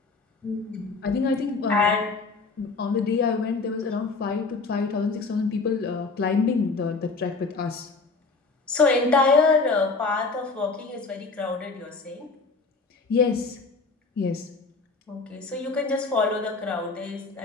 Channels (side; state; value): right; quieter; 4.0 dB